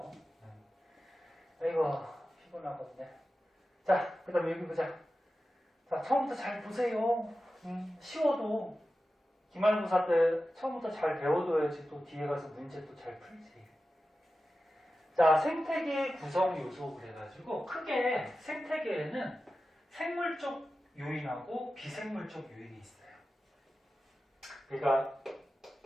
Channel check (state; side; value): normal; both; correlation 0.93